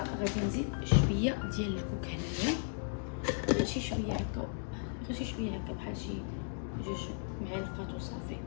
نزيد شويه ديال الكوك هنايا، غير شي شويه هكا، غير شي شويه هكا بحال شي 2 معالق وصافي،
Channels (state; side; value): silent; right; digital silence